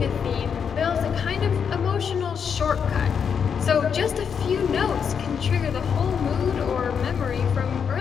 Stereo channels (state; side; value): quieter; right; 7.0 dB